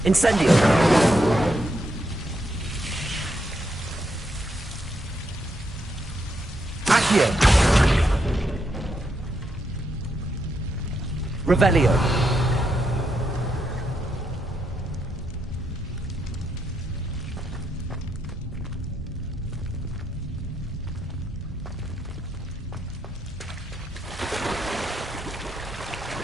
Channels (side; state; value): both; normal; correlation 0.80